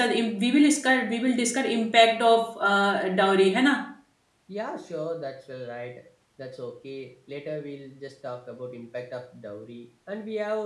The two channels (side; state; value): both; identical; correlation 1.00